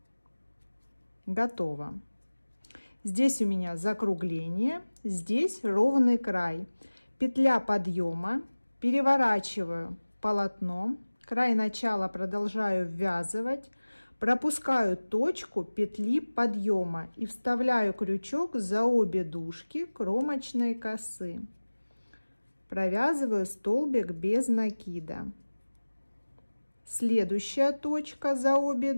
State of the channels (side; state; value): both; inverted; correlation -1.00